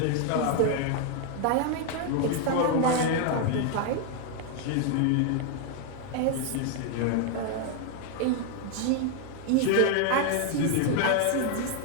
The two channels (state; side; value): different; both; correlation 0.00